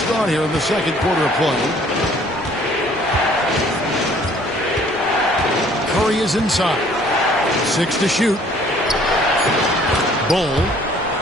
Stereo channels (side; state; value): both; normal; correlation 0.57